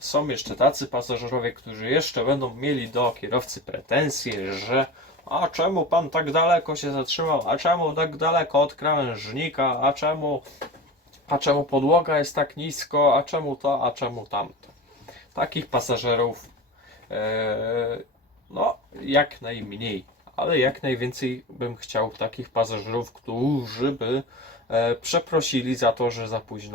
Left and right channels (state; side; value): normal; both; correlation 0.31